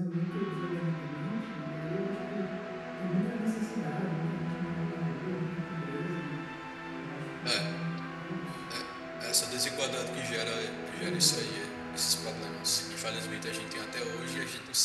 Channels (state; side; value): identical; both; correlation 1.00